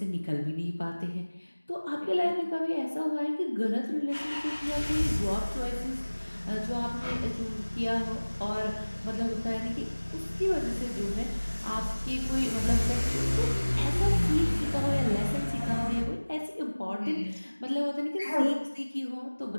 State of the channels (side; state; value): both; inverted; correlation -1.00